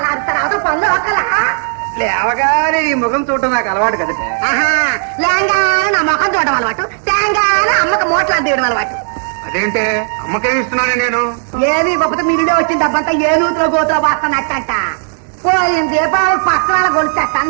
అరుస్తారు అవతల పనులు ఒకలా లేవగానే ఈ ముఖం చూడటం నాకు అలవాటు కదట. లేంగానే నా ముఖం చూడడం అలవాటు, తేంగానే అమ్మకి మోట్లాడి తీయడం అలవాటు. అదేంటే అమ్మకేమి ఇస్తున్నాను నేను? ఏది ఇవ్వకపోతే మీరుడే వచ్చిన డబ్బంతా ఏ నూతులో గోతులో వస్తున్నట్టంట. పోయిన దీపావళి పక్కన గొలుచట్ట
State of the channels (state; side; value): silent; left; 63 dB below the other